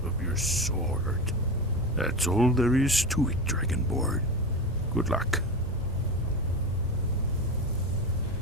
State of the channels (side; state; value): both; normal; correlation 0.22